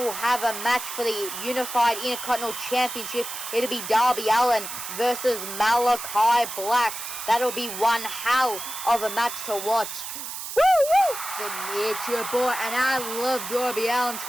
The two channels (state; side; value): noise; right; hiss, 7 dB below the sound